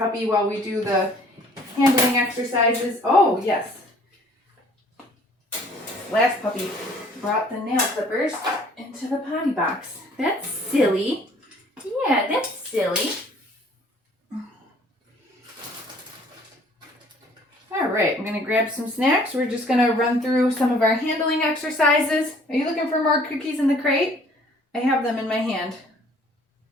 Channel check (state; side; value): normal; both; correlation 0.56